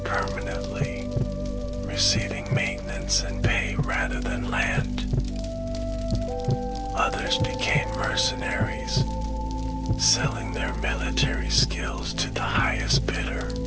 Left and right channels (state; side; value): identical; both; correlation 1.00